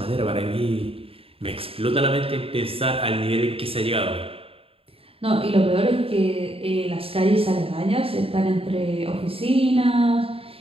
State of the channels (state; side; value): late; left; 0.27 ms